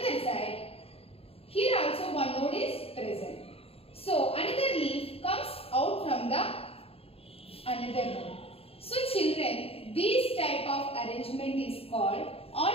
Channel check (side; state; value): right; late; 0.28 ms